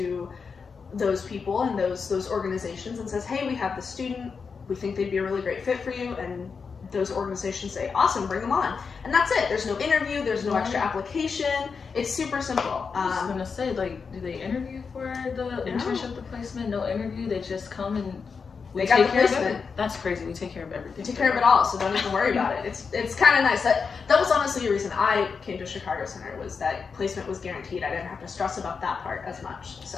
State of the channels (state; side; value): quieter; right; 5.4 dB